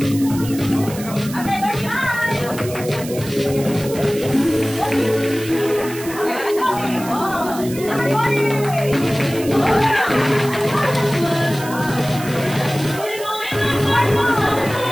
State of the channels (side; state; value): right; noise; hiss, 13 dB below the sound